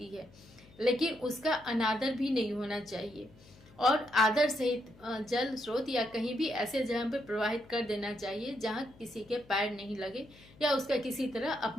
है, लेकिन उसका अनादर भी नहीं होना चाहिए और आदर सहित जल स्रोत या कहीं भी ऐसे जगह पर प्रवाहित कर देना चाहिए जहां किसी के पैर नहीं लगे या उसका किसी तरह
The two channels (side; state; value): left; noise; hum, 24 dB below the sound